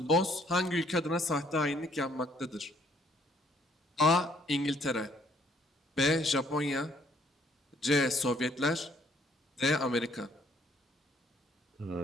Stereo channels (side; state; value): both; normal; correlation 0.65